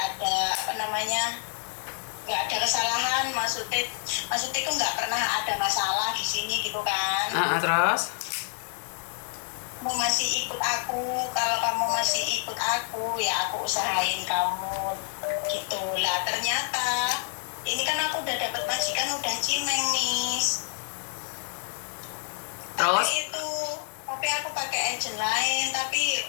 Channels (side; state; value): right; silent; 59 dB below the other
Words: apa namanya, nggak ada kesalahan, maksudnya itu nggak pernah ada masalah di sini gitu kan. Terus? Kamu masih ikut aku, kalau kamu masih ikut aku ya aku usahain kamu gitu lah. Ternyata ini kan aku udah dapat majikan, udah cimeng, Miss. Terus? Tapi aku pakai agent lain, tapi